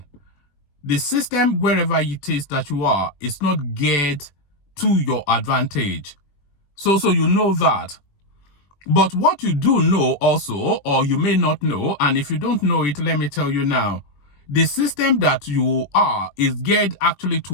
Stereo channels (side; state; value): right; late; 21 ms